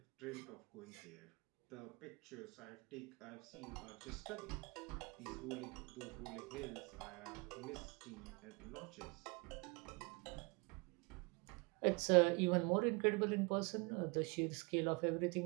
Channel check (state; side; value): quieter; left; 29.4 dB